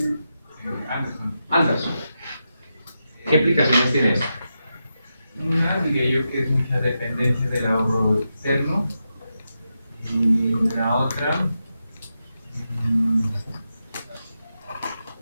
Anderson. ¿Qué implicaciones tiene esto? Una diría yo que es mucha dependencia del ahorro externo y la otra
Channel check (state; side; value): inverted; both; correlation -0.88